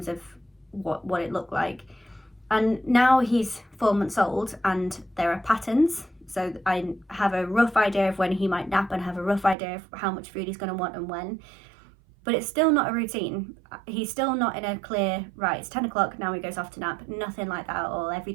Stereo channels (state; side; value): drops out; left; at 9.6 s